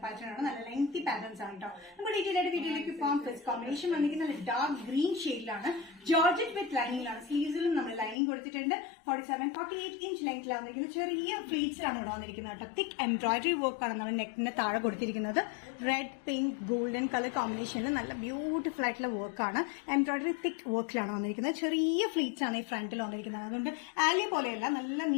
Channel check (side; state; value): right; drops out; at 8.2 s